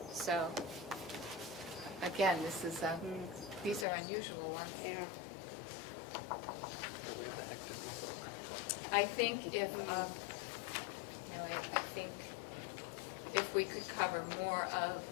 So, again, this is, these are unusual ones. Yeah. I think if, I think if we could cover more of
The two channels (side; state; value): right; drops out; at 3.9 s